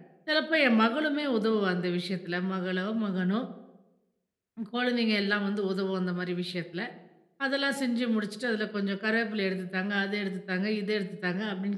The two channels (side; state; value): both; identical; correlation 1.00